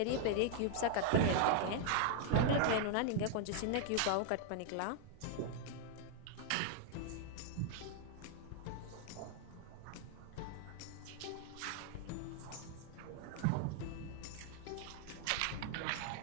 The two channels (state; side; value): different; both; correlation 0.00